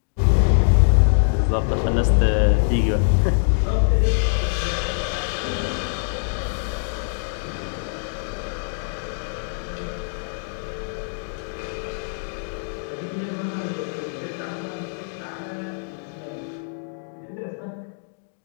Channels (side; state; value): right; silent; digital silence